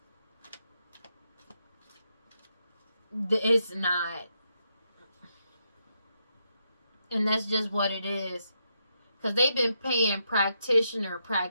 It's not. And that's just what it is. Because they've been paying practitioner.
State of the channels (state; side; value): inverted; both; correlation -0.81